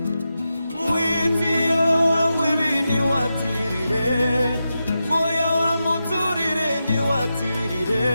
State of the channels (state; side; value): inverted; both; correlation -0.89